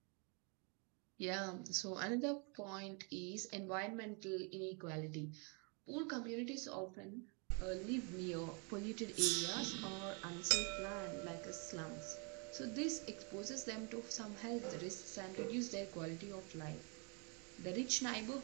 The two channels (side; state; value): left; quieter; 35.4 dB